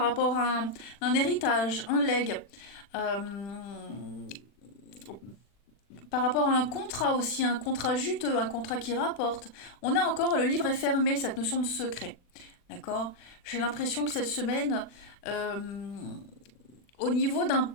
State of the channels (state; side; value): late; right; 40 ms